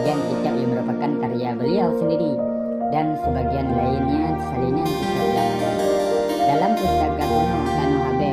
kitab yang merupakan karya beliau sendiri dan sebagian lainnya salinan kitab ulama. Dalam pustaka kuno Tanah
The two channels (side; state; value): both; identical; correlation 1.00